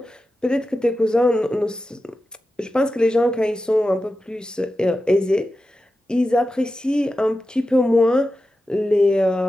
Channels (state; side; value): normal; both; correlation 0.92